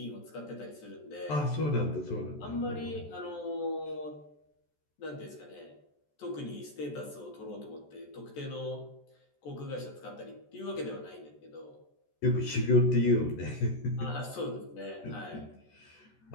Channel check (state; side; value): late; right; 14 ms